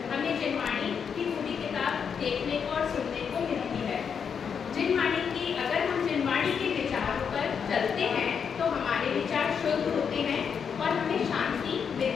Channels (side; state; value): right; quieter; 6.8 dB